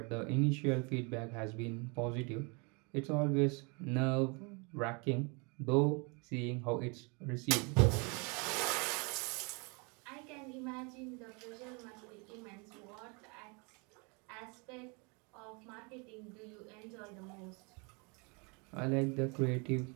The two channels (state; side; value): quieter; left; 31.7 dB